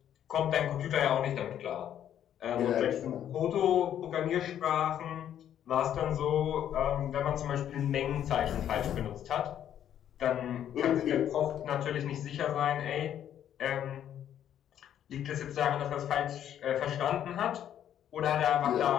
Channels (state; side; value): quieter; right; 10.3 dB